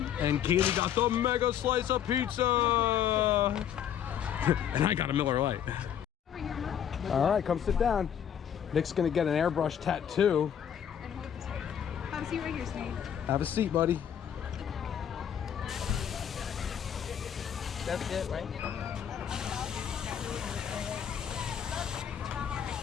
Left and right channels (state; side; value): quieter; right; 9.2 dB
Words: And Kaylee got the mega slice of pizza. And I got a Miller Lite. All right, come sit down. Nick's gonna get an airbrush tattoo. Have a seat right here, Snake. Have a seat, buddy. That's it, right?